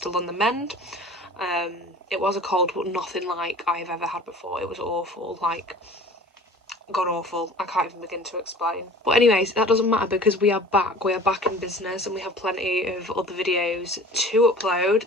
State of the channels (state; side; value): normal; both; correlation 0.43